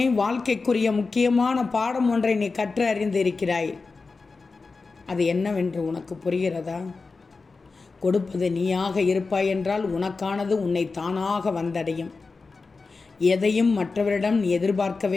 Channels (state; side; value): quieter; right; 4.2 dB